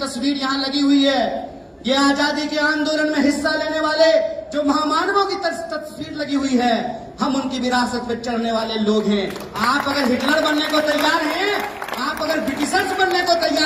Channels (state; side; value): identical; both; correlation 1.00